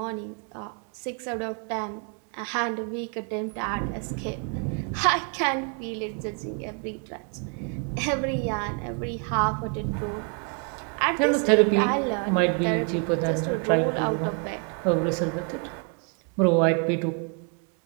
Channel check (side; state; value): left; quieter; 38.4 dB